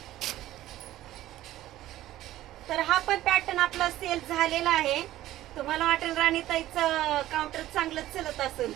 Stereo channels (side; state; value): left; quieter; 14.5 dB